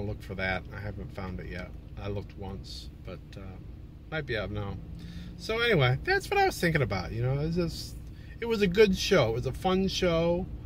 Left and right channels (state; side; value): identical; both; correlation 1.00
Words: to look for that. I haven't found it yet. I looked once, but might be out now. So anyway, that's what I was thinking about. You know, it was a good show. It was a fun show.